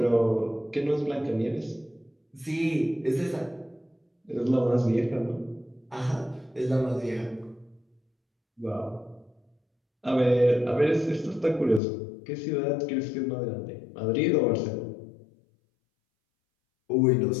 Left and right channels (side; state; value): right; drops out; at 11.8 s